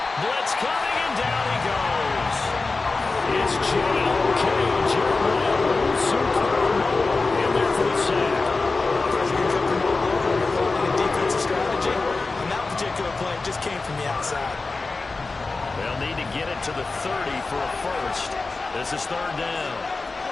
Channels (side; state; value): right; quieter; 3.7 dB